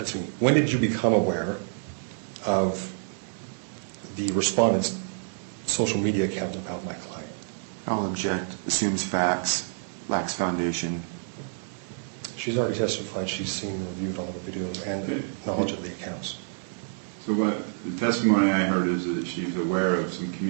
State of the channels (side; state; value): left; silent; 60 dB below the other